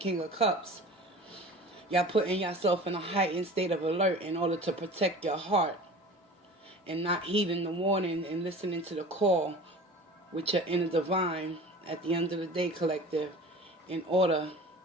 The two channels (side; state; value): both; normal; correlation 0.40